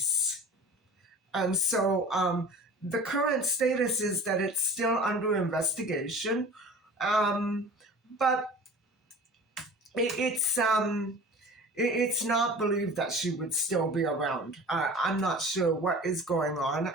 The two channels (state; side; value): normal; both; correlation 0.40